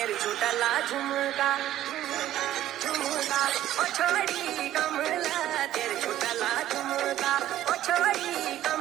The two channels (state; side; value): quieter; left; 13.0 dB